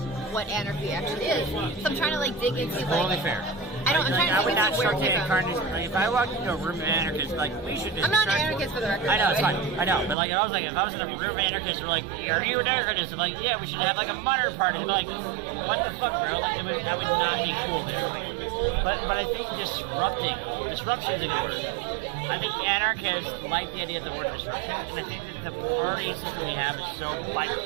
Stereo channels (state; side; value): drops out; left; at 10.2 s